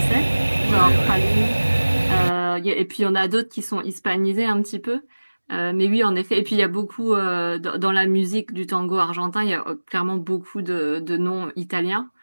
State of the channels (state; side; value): inverted; both; correlation -1.00